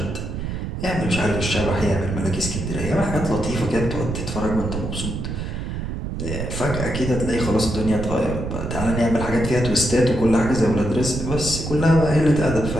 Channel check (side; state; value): right; noise; rumble, 5 dB below the sound